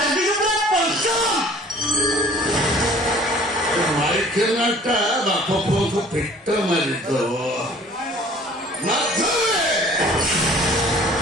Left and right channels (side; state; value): both; normal; correlation 0.51